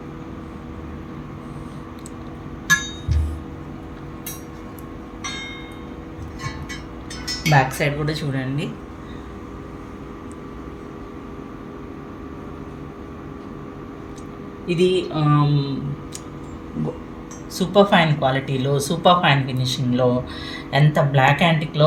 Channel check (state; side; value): identical; both; correlation 1.00